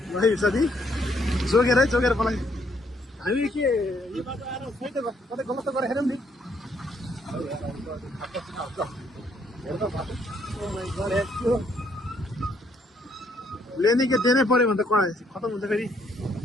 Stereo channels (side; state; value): both; normal; correlation 0.69